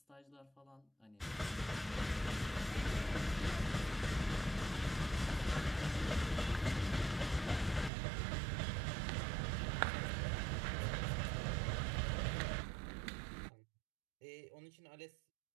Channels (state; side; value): drops out; left; at 7.9 s